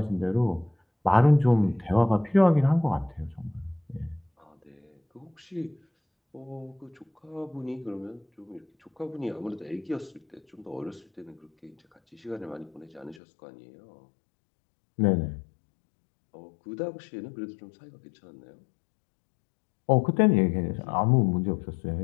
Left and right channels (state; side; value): drops out; right; at 13.2 s